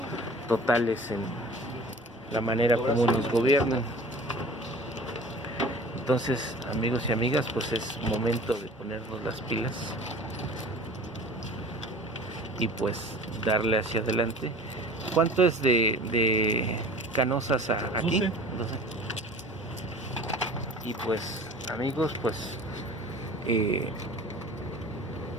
totales en la manera como nos gobiernan. Entonces, amigos y amigas, pues es momento de ponernos las pilas y pues darle hacia adelante. ¿Cuánto es de Canossas a aquí? 12. Y pues, amigos, pues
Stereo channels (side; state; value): both; normal; correlation 0.43